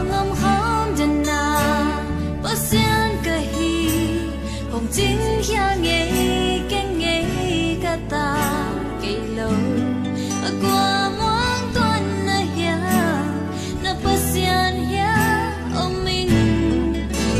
ngâm khóm đền na bao xiên cả hi hồng chính khéo nhảy ken nhảy cả ta cây lâu ở qua muôn tuần na hiang na bao xiên hiang ông mình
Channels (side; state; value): both; identical; correlation 1.00